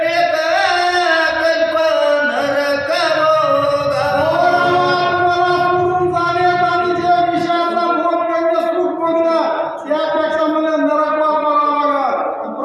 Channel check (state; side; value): identical; both; correlation 1.00